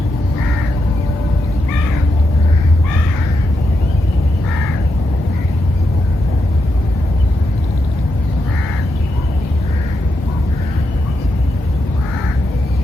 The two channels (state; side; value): normal; both; correlation 0.83